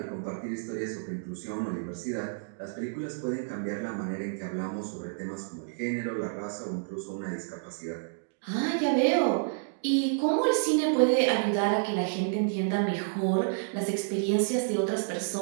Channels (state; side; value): silent; left; digital silence